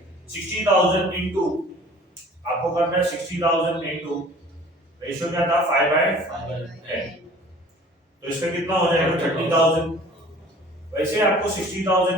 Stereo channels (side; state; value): both; normal; correlation 0.47